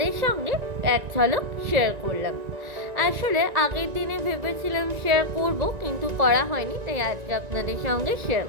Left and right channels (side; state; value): left; late; 1.9 ms